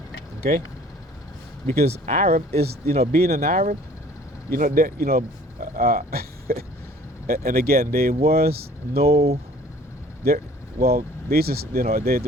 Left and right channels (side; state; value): both; normal; correlation 0.52